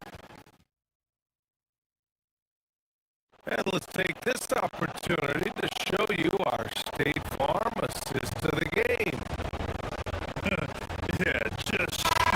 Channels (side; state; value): both; identical; correlation 1.00